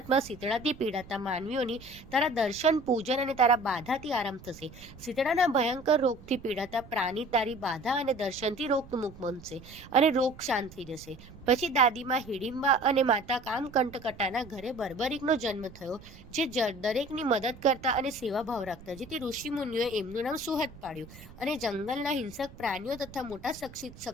શીતળાથી પીડાતા માનવીઓની તારા દર્શન પૂજન અને તારા બાધાથી આરામ થશે. શીતળાના ભયંકર રોગથી પીડાતા પ્રાણી તારી બાધા અને દર્શનથી રોગમુક્ત બનશે અને રોગ શાંત થઈ જશે. પછી દાદીમાં હિડિંબા અને માતા કામકંટકટાના ઘરે બર્બરિકનો જન્મ થયો, જે દરેકની મદદ કરતા અને સેવાભાવ રાખતા, જેથી ઋષિમુનિઓએ એમનું નામ સુહદ પાડ્યું અને જંગલના હિંસક પ્રાણીઓ તથા મોટા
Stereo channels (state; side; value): noise; right; rumble, 18 dB below the sound